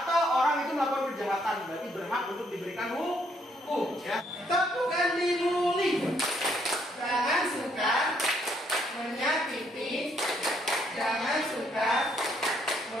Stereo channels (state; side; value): normal; both; correlation 0.70